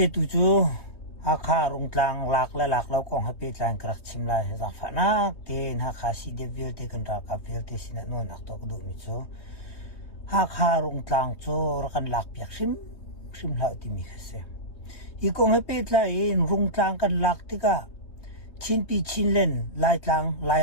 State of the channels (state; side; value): late; right; 3.2 ms